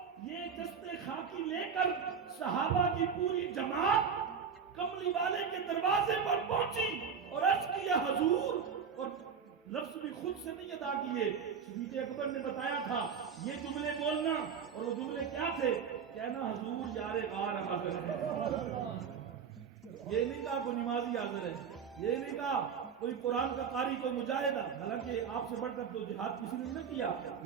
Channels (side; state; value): left; quieter; 6.7 dB